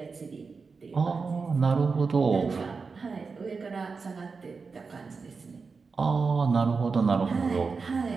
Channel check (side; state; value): left; quieter; 4.7 dB